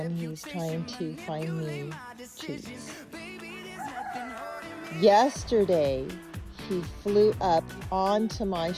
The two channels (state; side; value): identical; both; correlation 1.00